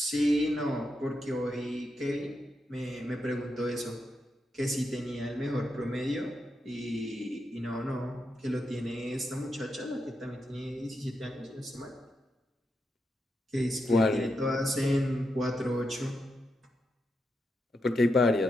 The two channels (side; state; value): both; normal; correlation 0.84